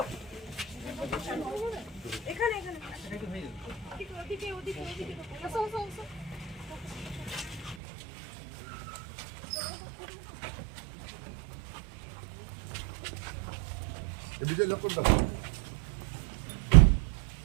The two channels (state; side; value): drops out; left; at 7.8 s